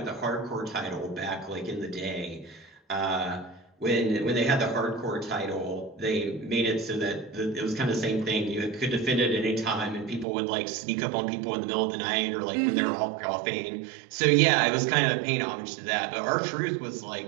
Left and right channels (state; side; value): drops out; left; at 10.2 s